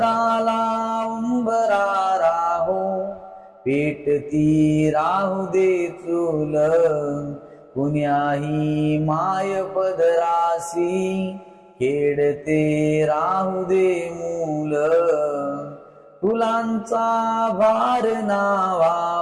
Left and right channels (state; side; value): identical; both; correlation 1.00